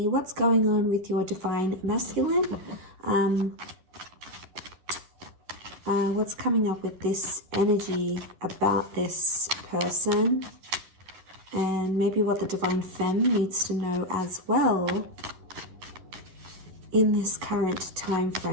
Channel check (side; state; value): left; late; 11 ms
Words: what's going on with your divine masculine. What's coming up with this energy about this person, and maybe what the divine femme needs to know as well in this current time